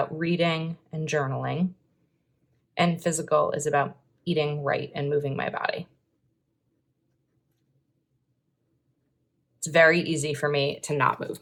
reading and journaling. And physical is about eating right and moving my body. It's very easy for me to not move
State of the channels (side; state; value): both; identical; correlation 1.00